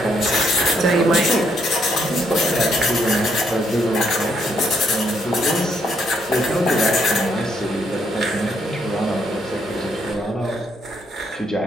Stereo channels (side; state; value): both; normal; correlation 0.73